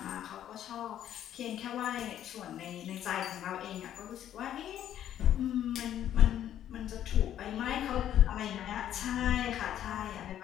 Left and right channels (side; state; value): right; quieter; 11.0 dB